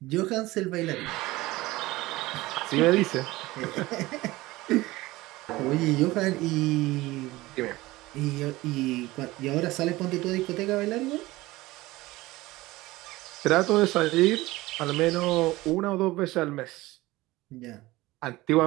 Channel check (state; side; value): quieter; left; 19.2 dB